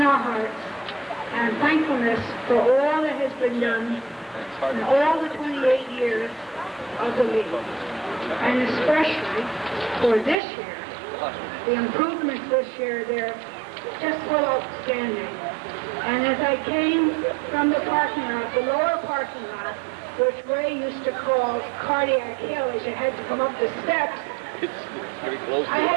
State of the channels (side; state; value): left; drops out; at 10.4 s